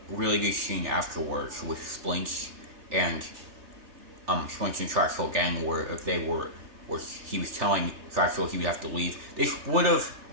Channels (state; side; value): late; left; 3.4 ms